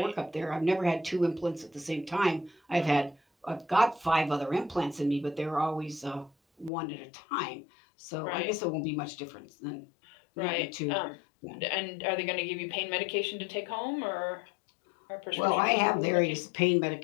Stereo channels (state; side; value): drops out; right; at 6.7 s